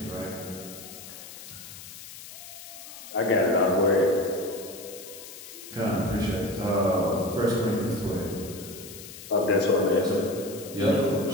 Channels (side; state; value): left; noise; hiss, 14 dB below the sound